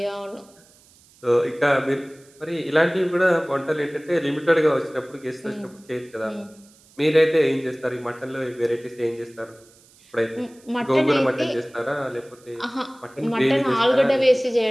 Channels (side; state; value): right; noise; hiss, 28 dB below the sound